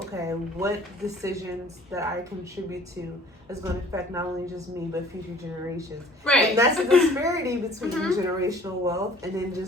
what decisions that I contribute to is going to affect not only just me, but future generations. Right. And that's a disparity between generational wealth and then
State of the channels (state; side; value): normal; both; correlation 0.52